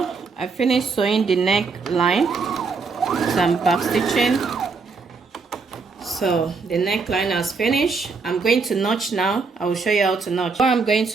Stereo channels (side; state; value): left; quieter; 4.7 dB